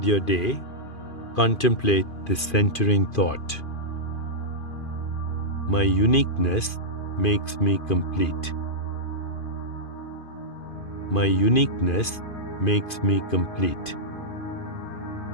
your day, contemplate this centering thought. My uniqueness makes me complete. My uniqueness makes me complete.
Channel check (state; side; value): late; right; 2.5 ms